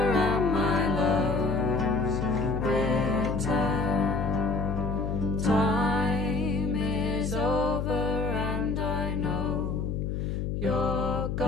and my love's return. Time is over and I know you're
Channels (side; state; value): left; noise; hum, 2 dB below the sound